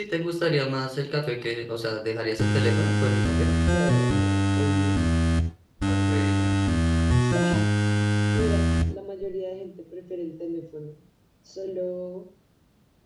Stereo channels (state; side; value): identical; both; correlation 1.00